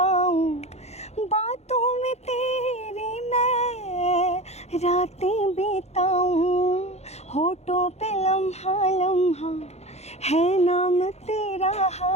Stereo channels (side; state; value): right; late; 0.31 ms